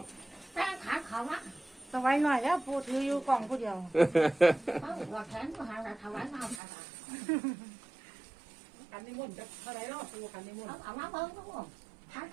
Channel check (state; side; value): drops out; left; at 6.6 s